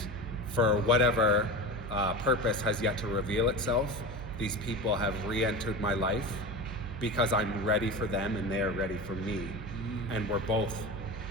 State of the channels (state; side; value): noise; right; hum, 10 dB below the sound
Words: for whatever purpose has yet to reveal itself, these people have re-entered my life because I'm ready for them and they're ready for me. And we're both,